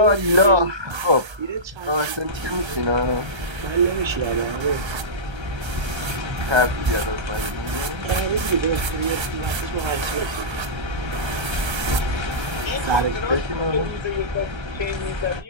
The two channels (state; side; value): late; left; 1.3 ms